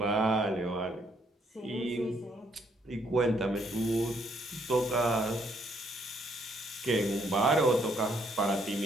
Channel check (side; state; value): both; normal; correlation 0.70